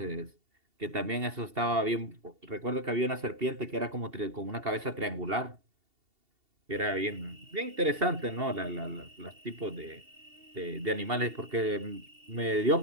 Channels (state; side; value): late; left; 2.7 ms